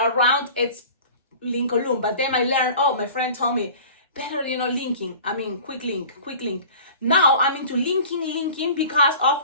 are round, it's Lincoln. But then I learned, my friend told me, better, linking. I mean, quick link. Now I'm into linking because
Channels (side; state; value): both; inverted; correlation -0.42